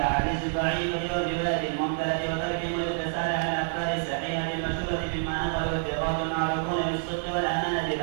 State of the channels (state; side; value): silent; left; digital silence